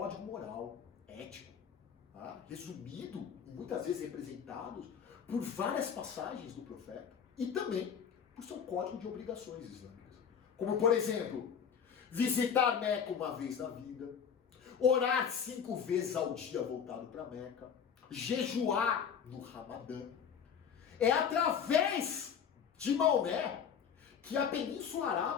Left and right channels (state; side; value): quieter; right; 7.4 dB